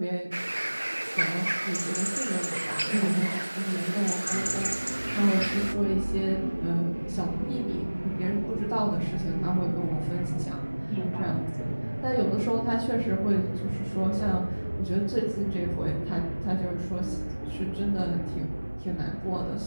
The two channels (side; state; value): both; inverted; correlation -1.00